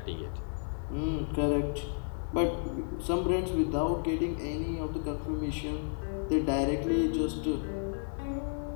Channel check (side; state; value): right; silent; digital silence